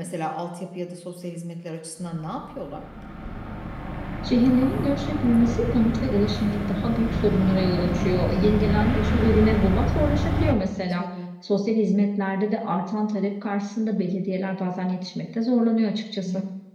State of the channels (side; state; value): both; identical; correlation 1.00